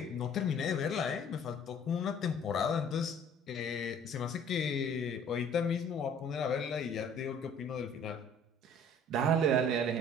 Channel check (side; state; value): both; normal; correlation 0.53